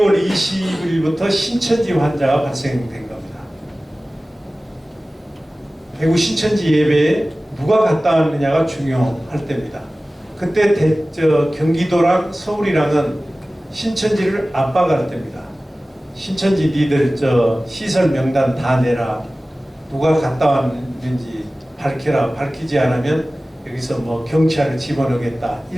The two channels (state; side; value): normal; both; correlation 0.97